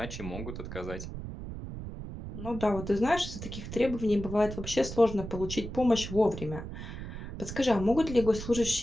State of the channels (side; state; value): right; noise; rumble, 8 dB below the sound